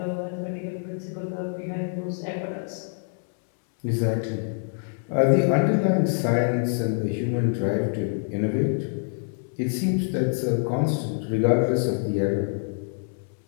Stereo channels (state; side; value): silent; right; 61 dB below the other